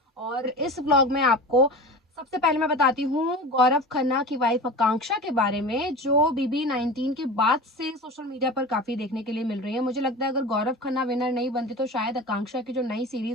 और इस व्लॉग में आपको सबसे पहले मैं बताती हूँ गौरव खन्ना की वाइफ आकांक्षा के बारे में, जो बीबी 19 के बाद से सोशल मीडिया पर काफी देखने के लिए मिल रही है। मुझे लगता है अगर गौरव खन्ना विनर नहीं बनती तो शायद आकांक्षा की जो नई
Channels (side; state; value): both; normal; correlation 0.32